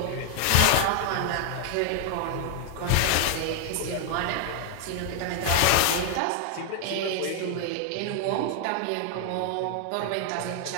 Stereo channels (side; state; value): both; different; correlation 0.00